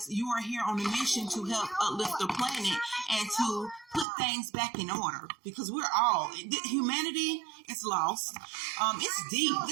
you are here on a mission to help uplift the planet and to put things back in order, because we're all, humanity is lost. It's deep.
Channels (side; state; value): left; drops out; at 4.0 s